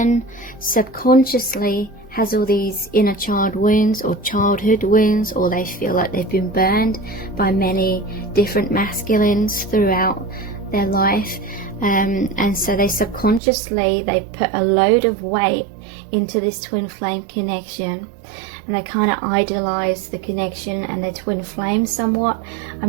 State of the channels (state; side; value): drops out; left; at 13.4 s